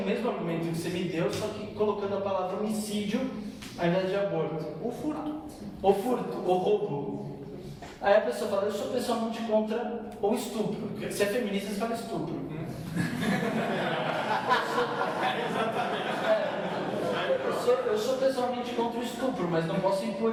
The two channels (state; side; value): identical; both; correlation 1.00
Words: mesmo argumento que você me deu, só que colocando a palavra homicídio ao invés de aborto. Ou furto, ou roubo. Aí a pessoa fala, eu sou pessoalmente contra o estupro. Porque se é feminista, você fala estupro. Eu sou pessoalmente contra o estupro, mas não posso